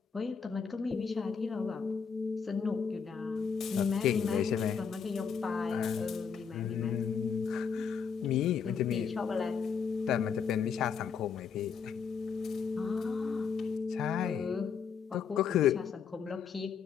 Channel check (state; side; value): quieter; right; 6.4 dB